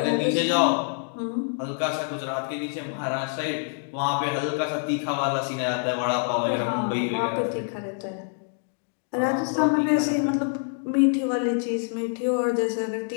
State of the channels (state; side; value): silent; right; 61 dB below the other